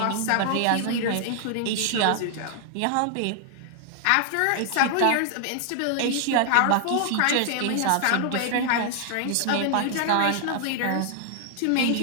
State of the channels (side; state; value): both; different; correlation 0.00